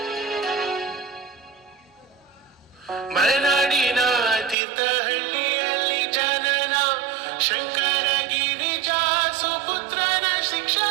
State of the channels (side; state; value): left; drops out; at 4.5 s